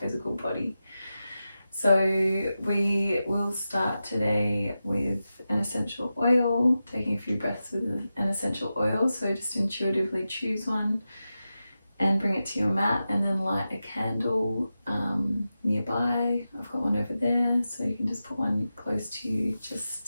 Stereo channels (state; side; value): inverted; both; correlation -0.92